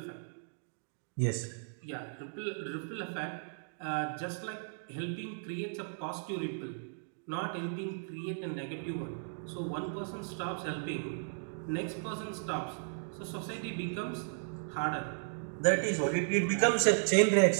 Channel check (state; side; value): silent; left; digital silence